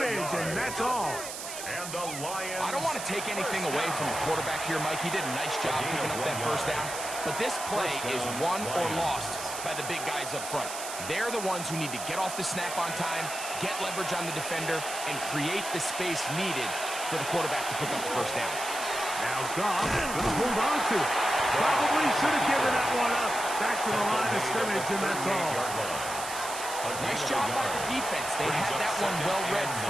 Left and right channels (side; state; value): right; noise; hiss, 8 dB below the sound